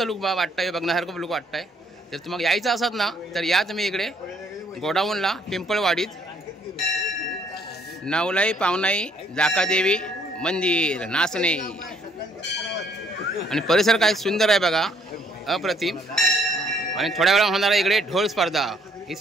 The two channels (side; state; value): both; normal; correlation 0.65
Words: लुक वाटतं आहे, बघण्यासारखं लुक वाटतं आहे. तर तुम्हाला यायचं असत ना तर या तुम्ही इकडे गोडाऊनला, पिंपळवाडीत, नवलाई पावनाई, जाका देवी मंदिर, नासने. आणि परिसर काय सुंदर आहे बघा, अप्रतिम. आणि थोड्या वेळा होणार आहे इकडे ढोल स्पर्धा. ही